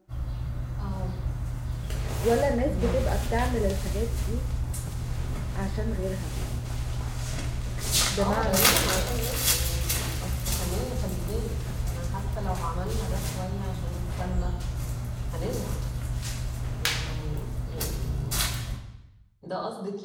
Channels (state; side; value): identical; both; correlation 1.00